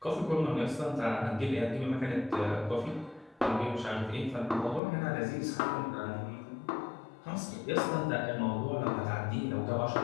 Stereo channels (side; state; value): right; drops out; at 4.8 s